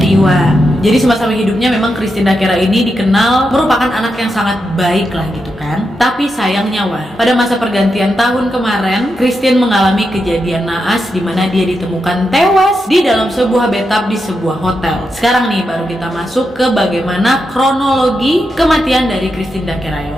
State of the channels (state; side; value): normal; both; correlation 0.86